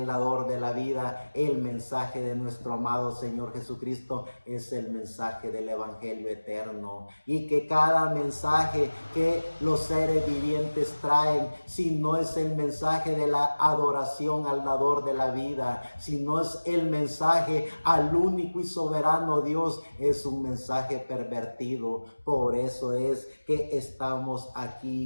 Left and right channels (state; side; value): inverted; both; correlation -1.00